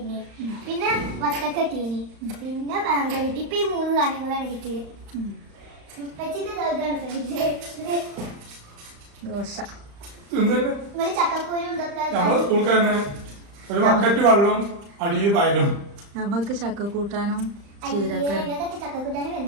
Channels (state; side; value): late; left; 35 ms